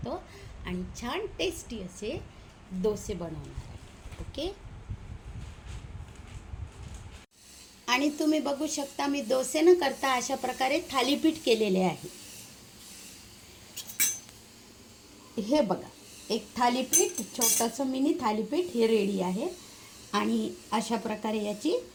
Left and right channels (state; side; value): identical; both; correlation 1.00